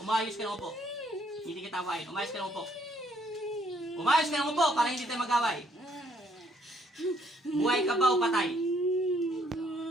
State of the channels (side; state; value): both; normal; correlation 0.67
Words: Umayos ka ng upo. Hindi kita awayin. Umayos ka ng upo. Umayos ka ng upo para hindi tayo mag-away. Buhay ka ba o patay?